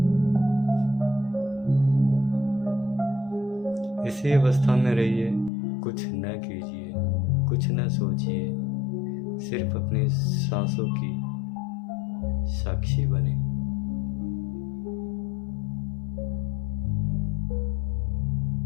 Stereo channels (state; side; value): drops out; right; at 5.5 s